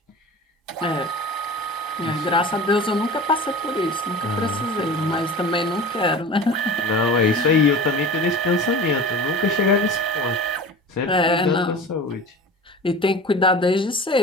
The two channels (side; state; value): both; normal; correlation 0.36